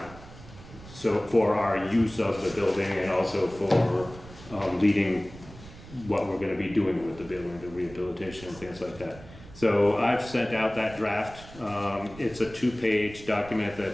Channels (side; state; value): right; noise; rumble, 18 dB below the sound